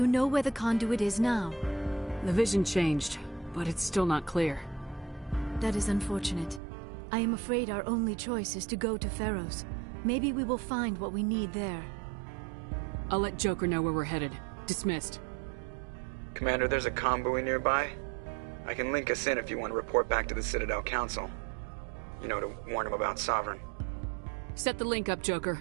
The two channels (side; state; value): left; drops out; at 6.6 s